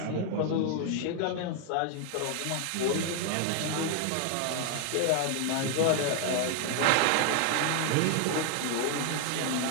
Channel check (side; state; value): both; different; correlation 0.00